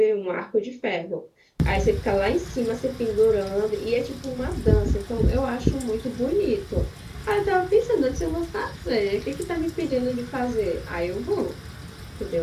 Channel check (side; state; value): both; identical; correlation 1.00